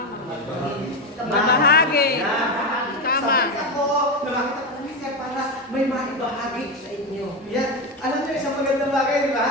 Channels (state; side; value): normal; both; correlation 0.14